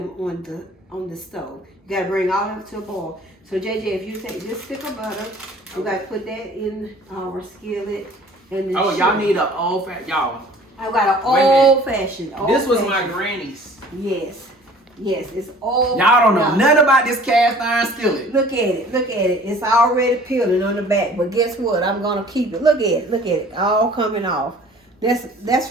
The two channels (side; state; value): both; normal; correlation 0.50